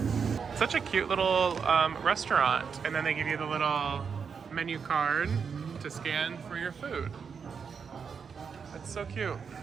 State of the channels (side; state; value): left; quieter; 6.2 dB